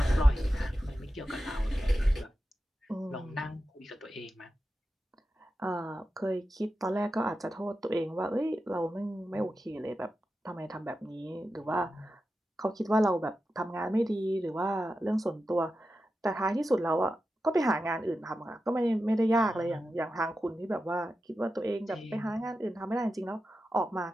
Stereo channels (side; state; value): both; normal; correlation 0.91